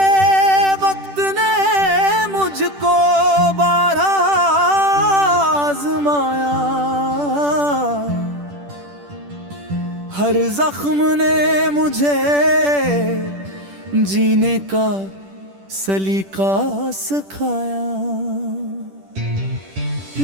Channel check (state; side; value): late; left; 10 ms